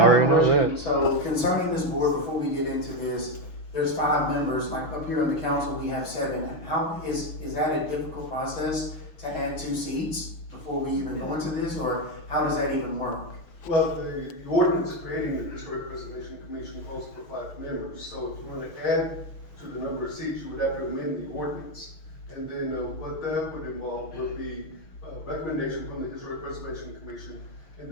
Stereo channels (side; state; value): right; late; 6.3 ms